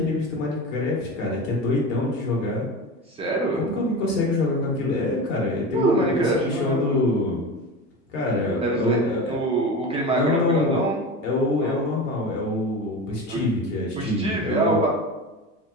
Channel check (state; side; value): normal; both; correlation 0.28